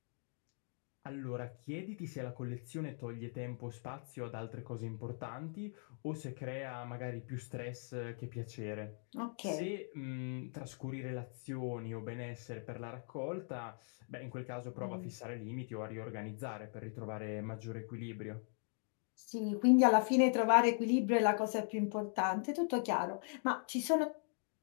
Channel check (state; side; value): silent; right; 51 dB below the other